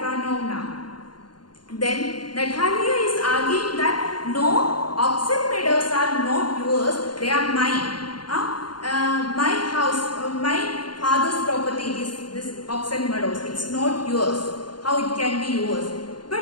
Then Natalia is arguing that no, oxen meadows are not yours, they are mine. My house, my father's property is this oxen meadows, it's not yours. How it can be yours? But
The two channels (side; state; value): right; late; 0.71 ms